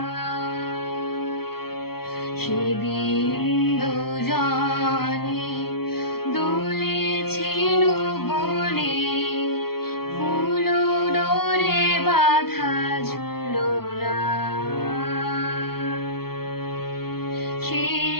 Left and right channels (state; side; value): late; right; 0.95 ms